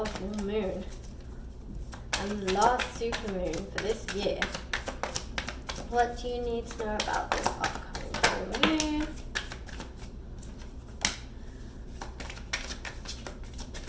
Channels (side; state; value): both; identical; correlation 1.00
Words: full moon? And last supermoon for this year. What do you need to know about this upcoming full moon?